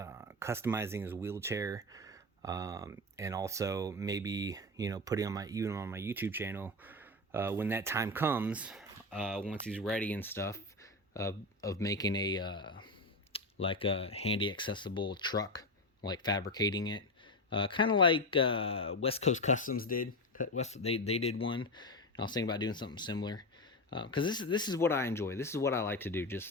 customizing his wheelchair, and also maybe, you know, putting on my YouTube channel when that time comes, once he's ready and stuff, of making a like a handy accessible truck, like fabricating it, kind of like West Coast Customs did. They did one. I was thinking about doing something similar, because this is what I enjoy. This is what I like to do.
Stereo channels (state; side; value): normal; both; correlation 0.17